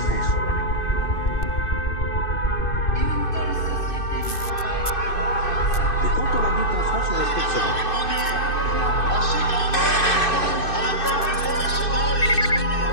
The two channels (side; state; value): right; late; 2.6 ms